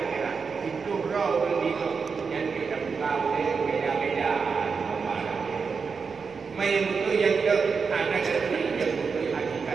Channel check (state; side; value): quieter; left; 5.3 dB